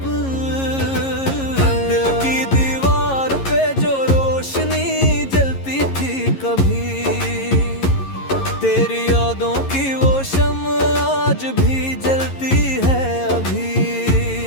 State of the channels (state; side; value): late; right; 11 ms